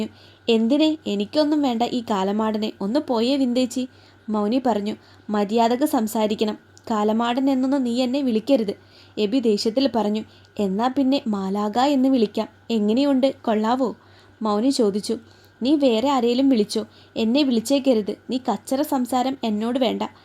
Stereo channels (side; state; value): both; identical; correlation 1.00